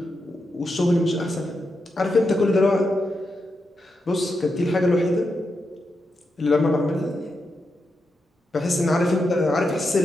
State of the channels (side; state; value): both; normal; correlation 0.86